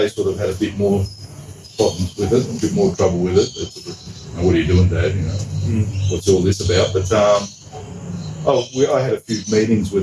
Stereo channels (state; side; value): identical; both; correlation 1.00